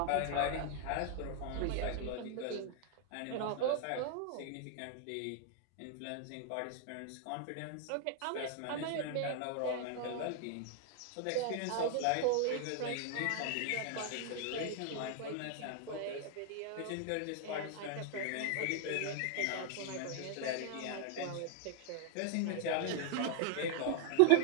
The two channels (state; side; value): different; both; correlation 0.00